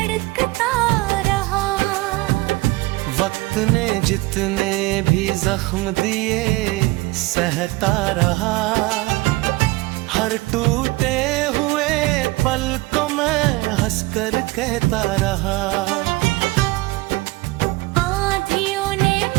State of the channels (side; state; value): left; quieter; 21.3 dB